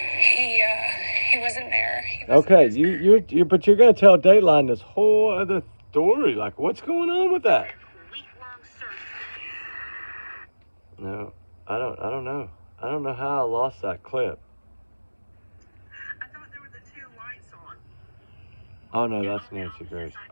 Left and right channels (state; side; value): inverted; both; correlation -1.00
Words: he wasn't there. Okay, you but you're gonna tell Dateline this whole other story. Like, what's going on with that? No, I don't know. I don't know how I lost that clip. I thought there were the two lights on. Oh no, that's Nancy Grace.